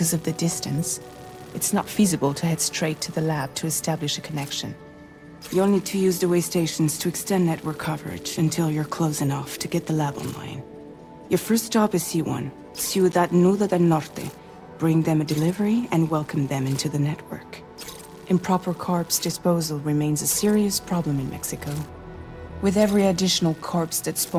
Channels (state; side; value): identical; both; correlation 1.00